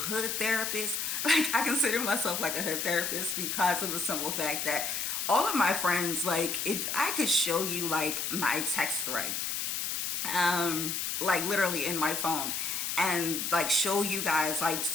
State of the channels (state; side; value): noise; left; hiss, 1 dB below the sound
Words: therapists. Like I consider myself like a hood therapist because of the simple fact that all of my friends, like if I could show you like my text thread, like literally in my phone, and like show you guys like